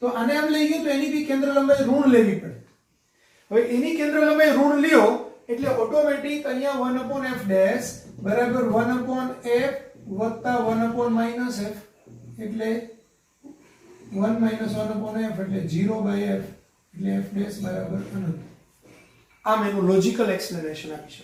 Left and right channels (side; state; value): both; identical; correlation 1.00